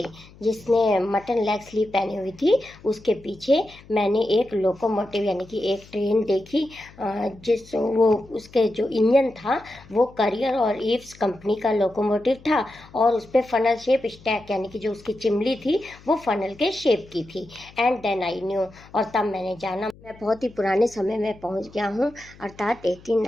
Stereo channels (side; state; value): left; noise; hum, 23 dB below the sound